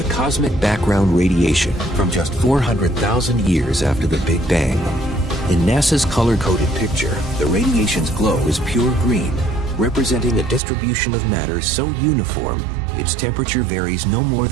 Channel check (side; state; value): left; drops out; at 10.6 s